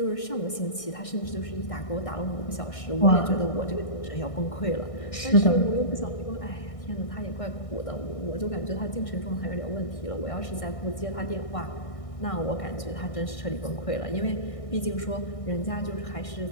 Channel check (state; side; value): late; right; 1.6 ms